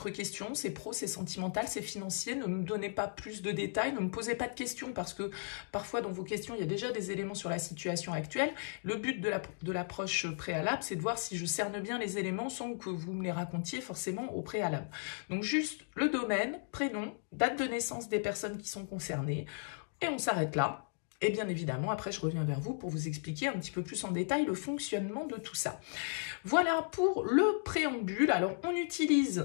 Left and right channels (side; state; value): right; silent; digital silence